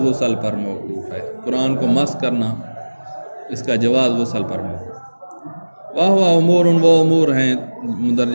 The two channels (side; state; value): both; inverted; correlation -1.00